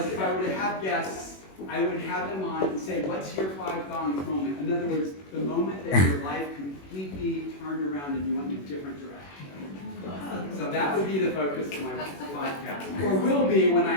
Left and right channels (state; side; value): late; right; 21 ms